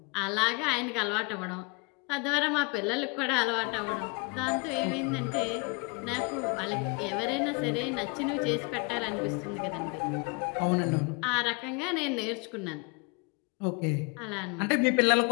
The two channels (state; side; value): quieter; right; 31.6 dB